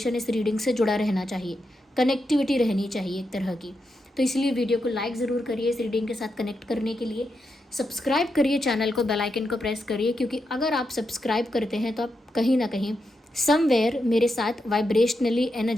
इस रीडिंग से जुड़ा रहना चाहिए, कनेक्टिविटी रहनी चाहिए एक तरह की। तो इसलिए वीडियो को लाइक ज़रूर करिए इस रीडिंग के साथ कनेक्ट करने के लिए। सब्सक्राइब करिए चैनल को, बेल आइकन को प्रेस करिए, क्योंकि अगर आप सब्सक्राइब करते हैं तो आप कहीं ना कहीं समवेयर मेरे साथ वाइब्रेशनली,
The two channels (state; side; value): normal; both; correlation 0.85